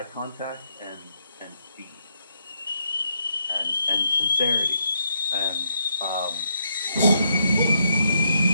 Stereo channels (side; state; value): both; inverted; correlation -0.77